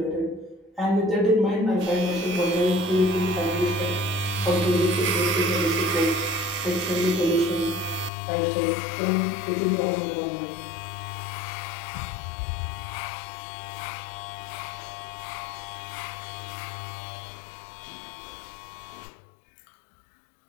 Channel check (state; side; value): drops out; right; at 8.1 s